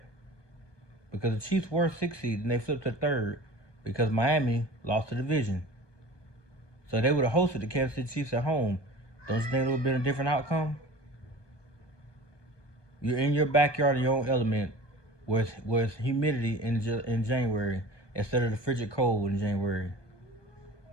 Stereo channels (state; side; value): late; right; 1.2 ms